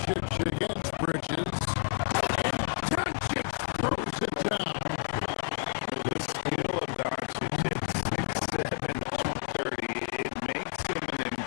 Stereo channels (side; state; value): right; silent; 58 dB below the other